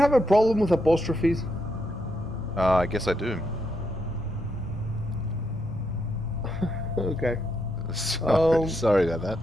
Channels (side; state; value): both; normal; correlation 0.80